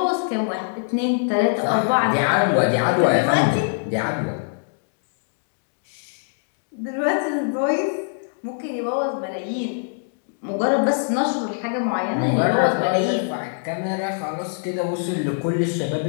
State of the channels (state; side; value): silent; right; digital silence